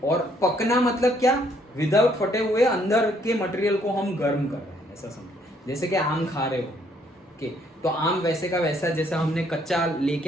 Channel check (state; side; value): normal; both; correlation 0.67